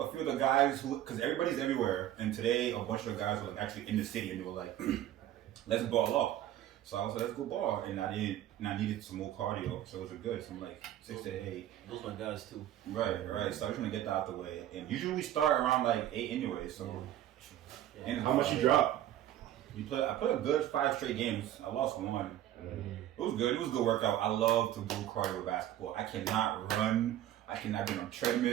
few of the guys because everybody's everywhere, and today a bunch of the guys were actually in the city, and they were like, "Let's ball up." So I was like, "Let's go ball," and I needed some more cardio, so it was good. So I'm like 6 to 8. Those my guys too. Right. So I was gonna get that out the way, and usually we start around like 8 anyway. So, and How much you drop? I played a good 5 straight games. I lost one. Mm-hmm. It was good. It was a good workout. I love to do cardio basketball. I cannot run. I cannot be on a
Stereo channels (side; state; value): left; quieter; 12.4 dB